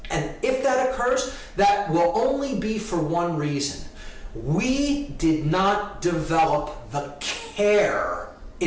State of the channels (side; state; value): both; identical; correlation 1.00